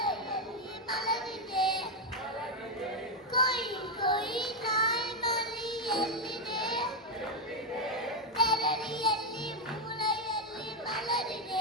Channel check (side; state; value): both; normal; correlation 0.03